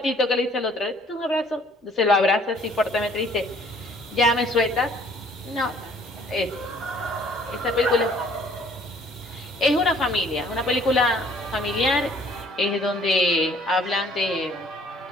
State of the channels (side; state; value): both; normal; correlation 0.58